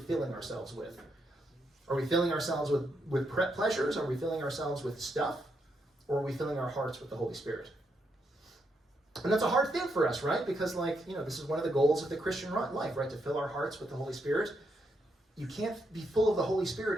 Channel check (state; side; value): normal; both; correlation 0.79